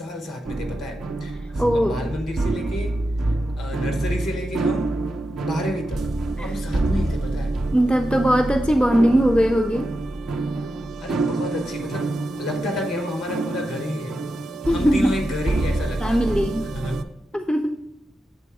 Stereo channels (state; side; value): normal; both; correlation 0.89